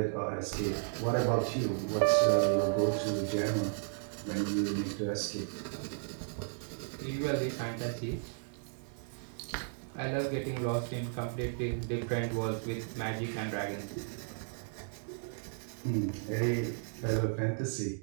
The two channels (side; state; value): left; silent; digital silence